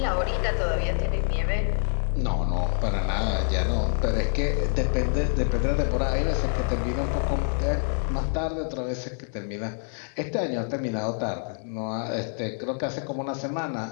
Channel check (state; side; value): silent; right; 61 dB below the other